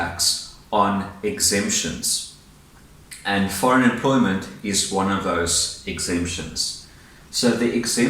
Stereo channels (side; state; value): both; identical; correlation 1.00